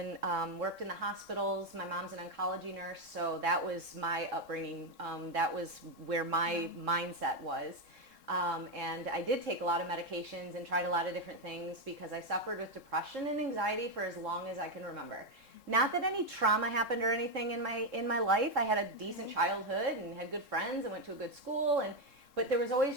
Worked in the hospitals. My mom's an oncology nurse, so that was my upbringing. That was where my mindset was. And I did take a lot of medications and tried a lot of different things because I suffered with depression and anxiety for as long as I can remember. Not that any trauma happened or anything in my life. I had a decent childhood and had good friends and went to a good school, but there was always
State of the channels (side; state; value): left; late; 3.7 ms